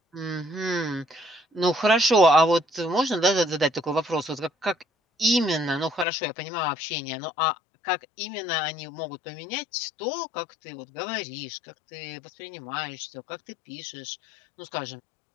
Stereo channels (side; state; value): right; drops out; at 6.1 s